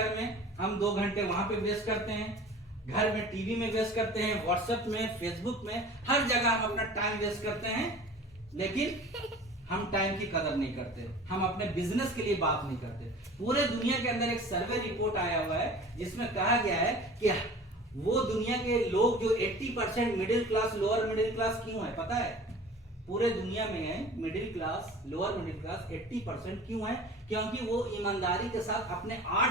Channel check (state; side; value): normal; both; correlation 0.42